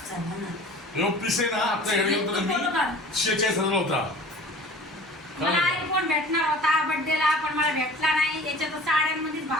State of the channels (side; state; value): both; normal; correlation 0.43